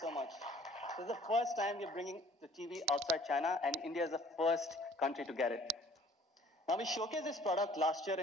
much. This is the first time we're bringing the TV outside China, and India is the first country to get it. Now, we showcased this product last year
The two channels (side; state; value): both; normal; correlation 0.54